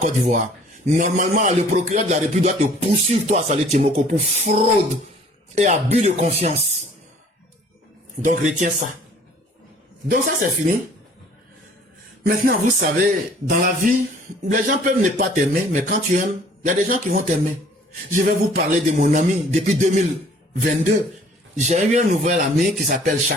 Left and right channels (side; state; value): both; normal; correlation 0.54